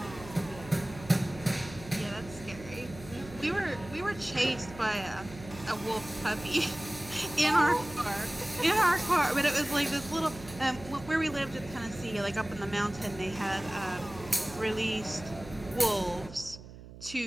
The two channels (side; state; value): right; noise; hum, 16 dB below the sound